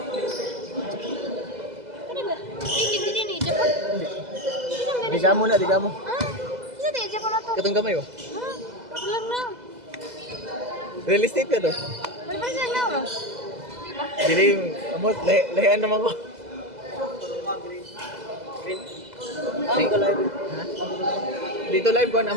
Ano ba? Hindi din i-Japon. Diga mo na, diga mo. Ah, isa din i-Japon na to. Katong kamay oh. Ah, paglang na. Real estate ka to. Ano ba siya na? Diba? Diling, amot, lahian naman ko. Ha? Dito live ko,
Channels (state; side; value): late; left; 2.0 ms